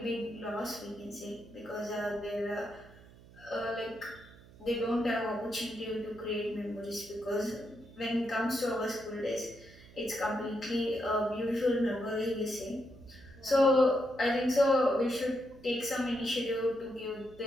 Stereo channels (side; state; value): right; noise; hum, 22 dB below the sound